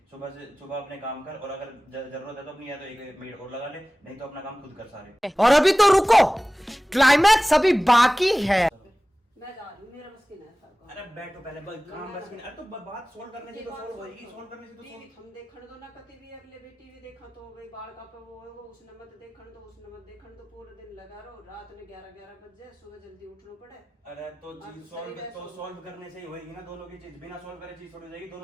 सुबह अपने काम कर और अगर जरूरत है तो अपनी या तो एक मेड और लगा ले, नहीं तो अपना काम खुद कर सारे। और अभी तो रुको, क्लाइमैक्स अभी बाकी है। मैं जा रही हूँ मेरा बस की नहीं था। अरे बैठो पहले काम बस अरे तो बात सोल्व करने से तो सोल्व होएगी, सोल्व करने से तो टीवी solve- हम देखण दो ना कति भी अगले भी टीवी देखा तो भाई बाल का पे वो उसने मत देखण दो उसने मत देखण दो पूरे दिन लगा रहो रात में 11 बज जाए सुबह जल्दी उठना पड़े। अरे तो अब चीज शरीर है solve। सॉल्व करने से ही होएगी ना दोनों की चीज। बिना सॉल्व करे चीज थोड़ी हो जाएगी।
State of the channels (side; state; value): both; normal; correlation 0.97